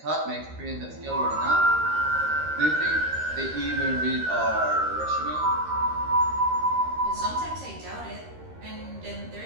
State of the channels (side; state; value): left; late; 13 ms